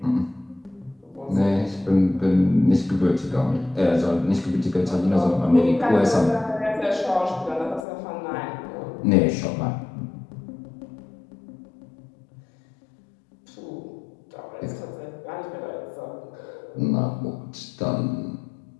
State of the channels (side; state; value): right; drops out; at 7.9 s